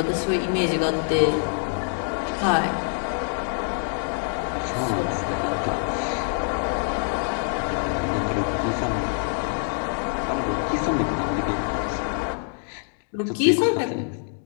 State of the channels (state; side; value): silent; right; 62 dB below the other